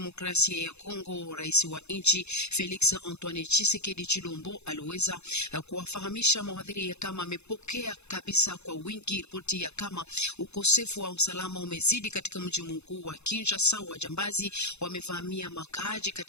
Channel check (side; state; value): right; late; 0.81 ms